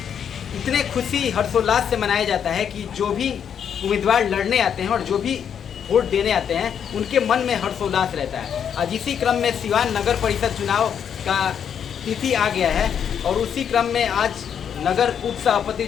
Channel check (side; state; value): right; quieter; 8.1 dB